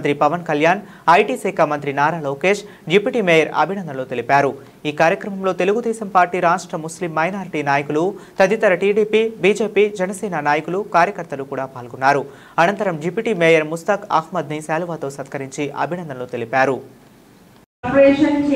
పవన్ కళ్యాణ్, ఐటీ శాఖ మంత్రి నారా లోకేష్, డిప్యూటీ మేయర్ అభినందనలు తెలిపారు. ఈ కార్యక్రమంలో తెలుగుదేశం పార్టీ రాష్ట్ర ముస్లిం మైనారిటీ నాయకులు, తదితర టీడీపీ, బీజేపీ, జనసేన నాయకులు, కార్యకర్తలు కూడా పాల్గొన్నారు. అనంతరం డిప్యూటీ మేయర్ ముస్తాక్ అహ్మద్ ని శాలువాతో సత్కరించి అభినందనలు తెలిపారు. కార్పొరేషన్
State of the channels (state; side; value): identical; both; correlation 1.00